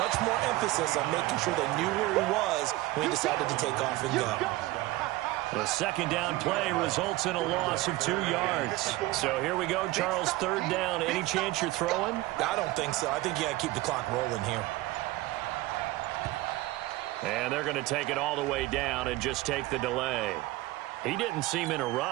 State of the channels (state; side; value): quieter; left; 18.4 dB